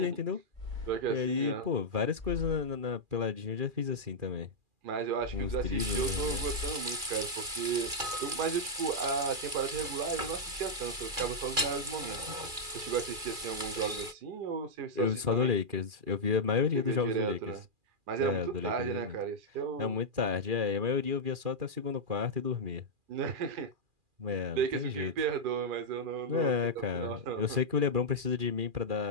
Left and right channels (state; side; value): late; left; 2.4 ms